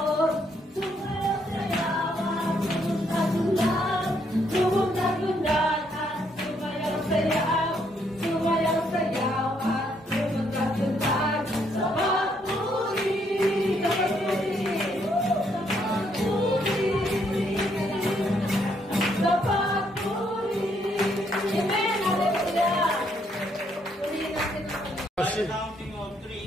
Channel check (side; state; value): both; normal; correlation 0.72